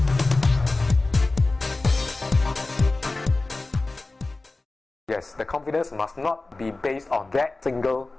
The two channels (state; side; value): quieter; right; 3.2 dB